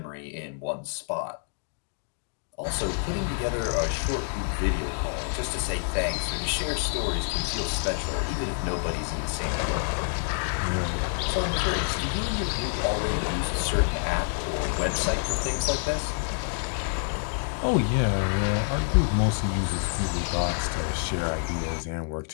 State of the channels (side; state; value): right; silent; 60 dB below the other